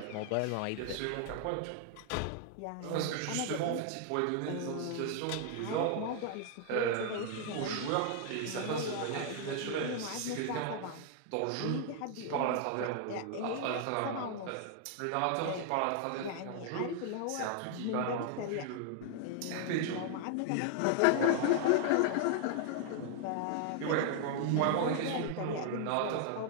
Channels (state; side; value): different; both; correlation 0.00